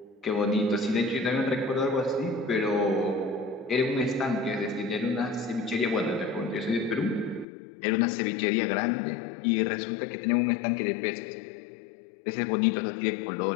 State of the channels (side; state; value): right; drops out; at 7.5 s